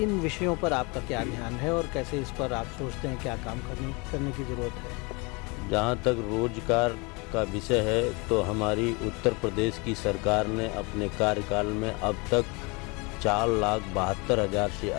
विषयों पर आपका क्या ध्यान है और कैसे इस पर आप सोचते हैं क्या काम करने की ज़रूरत है? जहाँ तक रोजगार का विषय है तो हमारी उत्तर प्रदेश की सरकार ने अपने कार्यकाल में अब तक 4,72,000 से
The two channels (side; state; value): right; quieter; 28.7 dB